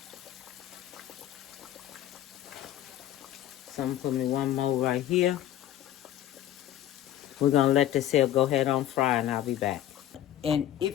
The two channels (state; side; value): quieter; right; 12.3 dB